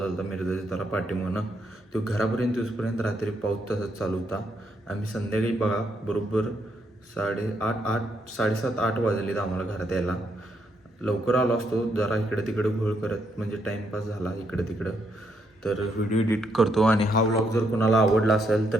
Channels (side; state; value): both; normal; correlation 0.76